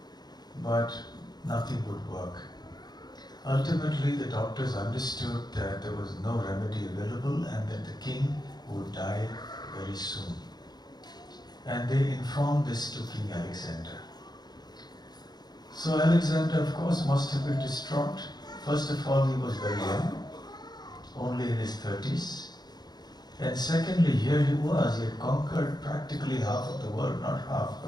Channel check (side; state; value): right; late; 0.20 ms